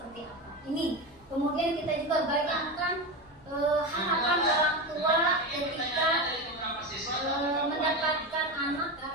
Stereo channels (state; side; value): normal; both; correlation 0.20